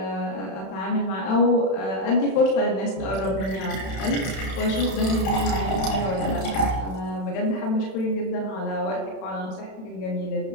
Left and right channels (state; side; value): late; right; 31 ms